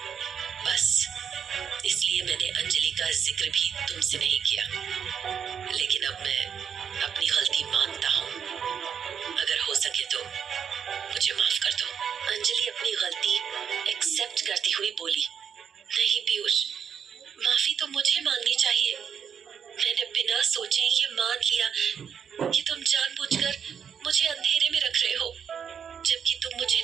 बस इसलिए मैंने अंजलि का जिक्र भी तुमसे नहीं किया। लेकिन अब मैं अपनी गलती मानता हूँ। अगर हो सके तो मुझे माफ कर दो। अंजलि अपनी गलती एक्सेप्ट करती हुई बोली, नहीं पीयूष, माफी तो मुझे मांगनी चाहिए। मैंने बिना सोचे ये मान लिया कि तुम जानबूझकर मुझे अंधेरे में रख रहे हो, जबकि तुम मुझे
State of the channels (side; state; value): left; quieter; 7.6 dB